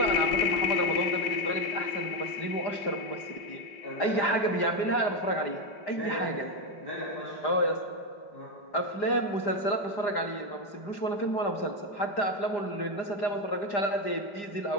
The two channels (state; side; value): late; right; 4.9 ms